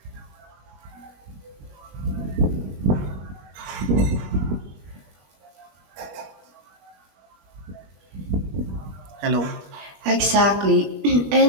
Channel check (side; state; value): left; late; 20 ms